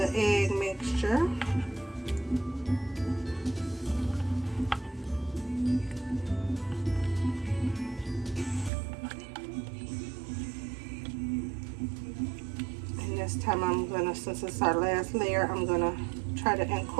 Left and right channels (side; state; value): left; drops out; at 8.7 s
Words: egg mixture. And this time I'm going to, since it's our last layer, I'm going to try to